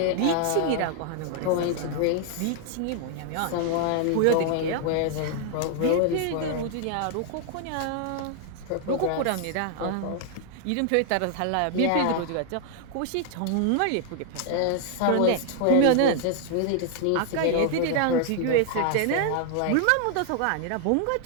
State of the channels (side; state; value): both; different; correlation 0.00